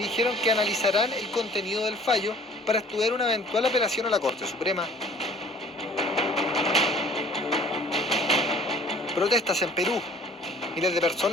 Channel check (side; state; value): both; normal; correlation 0.51